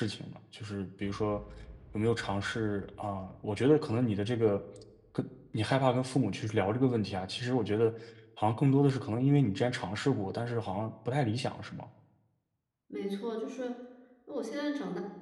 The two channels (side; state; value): both; identical; correlation 1.00